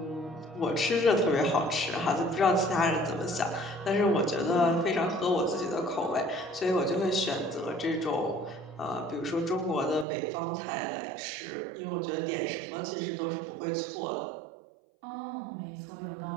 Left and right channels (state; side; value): drops out; left; at 10.1 s